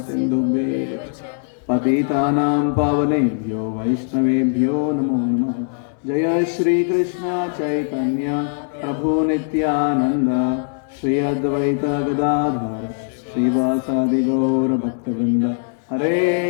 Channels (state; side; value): silent; right; 63 dB below the other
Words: च पतितानां पावनेभ्यो वैष्णवेभ्यो नमो नमः। जय श्री कृष्ण चैतन्य प्रभु नित्यानंद श्री अद्वैत गदाधर श्रीवासादि गौर भक्तवृंद हरे